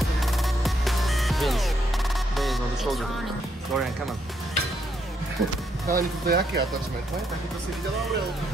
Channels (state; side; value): normal; both; correlation 0.76